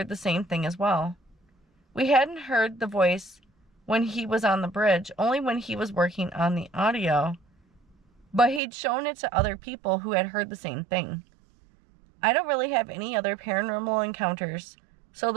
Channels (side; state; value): left; drops out; at 8.6 s